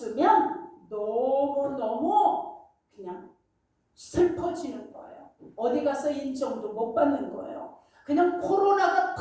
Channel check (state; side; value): identical; both; correlation 1.00